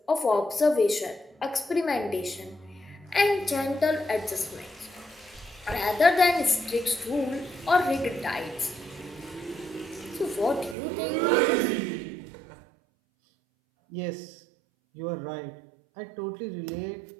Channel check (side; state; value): left; drops out; at 10.8 s